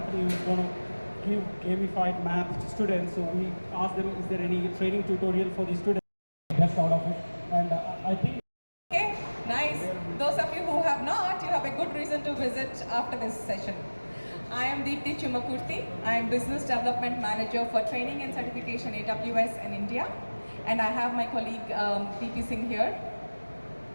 who's going to give gamified math to students. So we asked them, is there any training tutorial for the students? Best out of it. And I think... Okay, nice. Those of you who have not, you have a good reason to visit after this session. I am Deepthi Chumakurthy. I am Business Development Manager for Training and Certification AWS in India. And I have my colleague PP Singh here.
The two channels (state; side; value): inverted; both; correlation -1.00